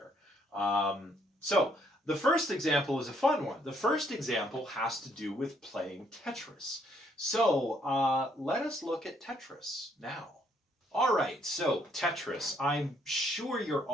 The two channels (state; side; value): normal; both; correlation 0.69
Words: So the first example is a fun one. The first example has to do with playing Tetris. So let us look at Tetris now. All right, so Tetris. I'm sure you're